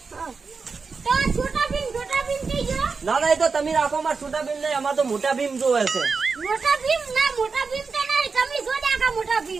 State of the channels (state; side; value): quieter; left; 4.8 dB